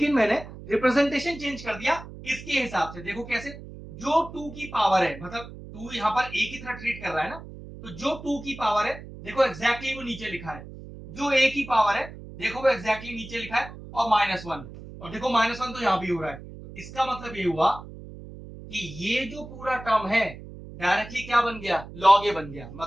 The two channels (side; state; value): right; noise; hum, 14 dB below the sound